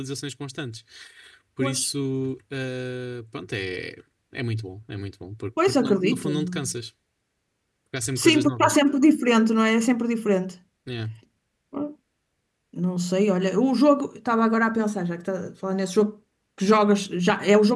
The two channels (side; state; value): both; identical; correlation 1.00